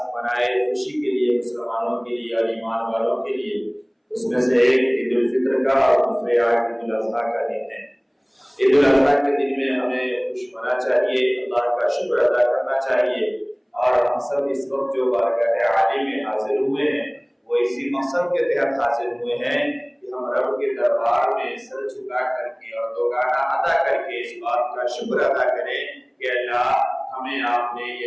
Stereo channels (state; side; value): identical; both; correlation 1.00